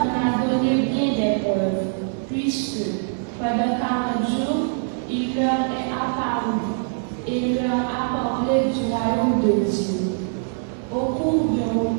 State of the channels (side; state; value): left; silent; 63 dB below the other